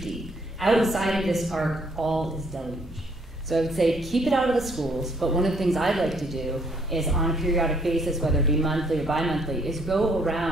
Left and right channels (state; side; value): normal; both; correlation 0.66